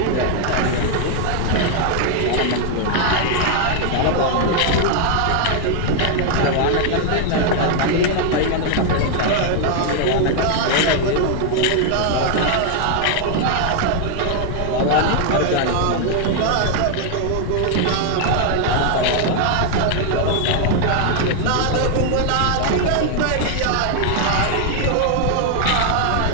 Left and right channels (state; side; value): different; both; correlation 0.00